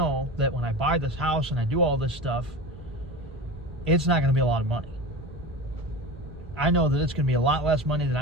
that when I buy this house and I do all this stuff, it's not going to be a lot of money. I know that it's going to be a lot less money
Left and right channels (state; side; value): normal; both; correlation 0.29